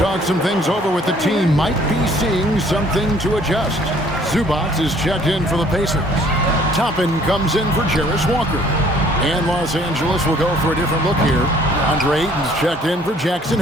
some things over with the team. Might be seeing something to adjust. Zubac is checked in for the Pacers. Toppin comes in for Jarris Walker. And Los Angeles will go for a different look here. Andre Ayton's checked in for Jackson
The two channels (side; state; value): both; normal; correlation 0.58